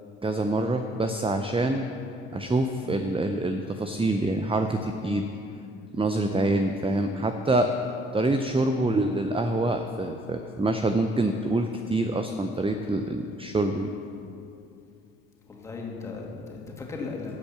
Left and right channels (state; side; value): normal; both; correlation 0.65